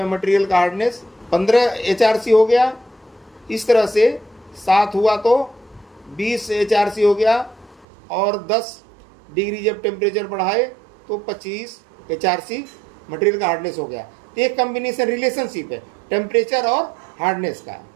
मटेरियल का हार्डनेस 15 HRC हो गया। इस तरह से 7 हुआ तो 20 HRC हो गया, और 10 डिग्री जब टेम्परेचर बढ़ाए तो 25 HRC मटेरियल का हार्डनेस हो गया। तो एक कॉम्बिनेशन रिलेशनशिप है टेम्परेचर और हार्डनेस का।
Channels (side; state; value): left; drops out; at 7.9 s